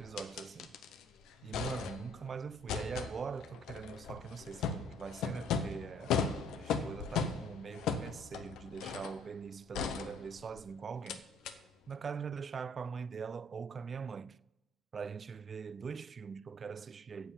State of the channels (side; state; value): both; normal; correlation 0.59